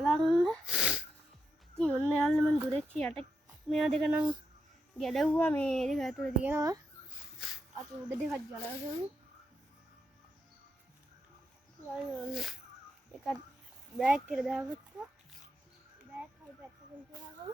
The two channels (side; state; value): both; normal; correlation 0.86